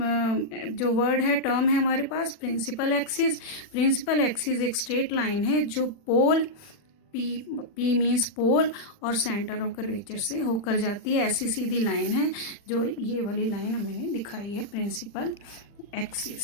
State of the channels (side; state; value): right; late; 40 ms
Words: जो वर्ड है, टर्म है हमारे पास, प्रिंसिपल एक्सिस। प्रिंसिपल एक्सिस एक स्ट्रेट लाइन है जो पोल, पी मीन्स पोल और सेंटर ऑफ कर्वेचर से होकर जाती है। ऐसी सीधी लाइन है जो ये वाली लाइन मैंने दिखाई है, प्रिंसिपल